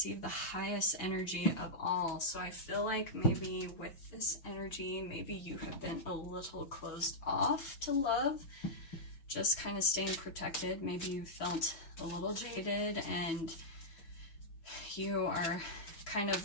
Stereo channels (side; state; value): right; late; 6.1 ms